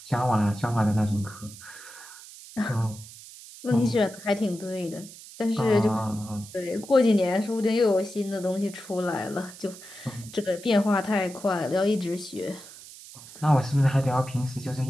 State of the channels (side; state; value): right; noise; hiss, 17 dB below the sound